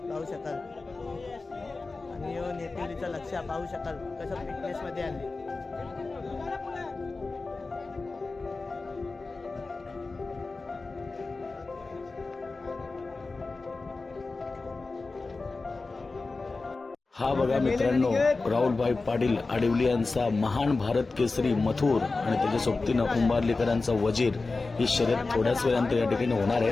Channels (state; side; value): quieter; right; 3.7 dB